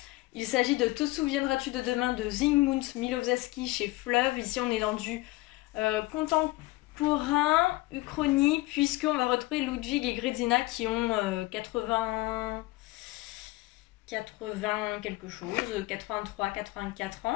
Il s'agit de Te souviendras-tu de demain de Zygmunt Milowski chez Fleuve. Ici on est dans du contemporain, uchronie, puisqu'on va retrouver Ludwig et Grézina qui ont 80 quelque chose, 83, 84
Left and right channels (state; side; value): quieter; right; 20.3 dB